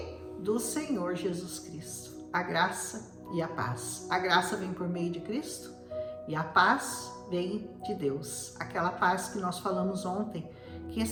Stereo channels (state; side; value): identical; both; correlation 1.00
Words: do Senhor Jesus Cristo. A graça e a paz. A graça vem por meio de Cristo e a paz vem de Deus. Aquela paz que nós falamos ontem, que